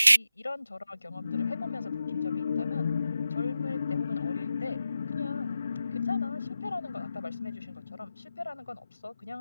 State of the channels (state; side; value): inverted; both; correlation -0.91